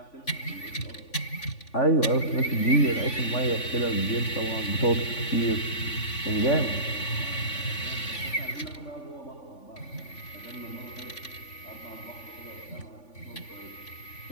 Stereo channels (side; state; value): right; late; 3.5 ms